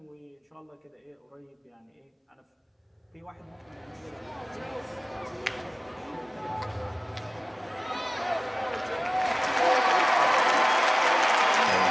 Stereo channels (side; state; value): both; identical; correlation 1.00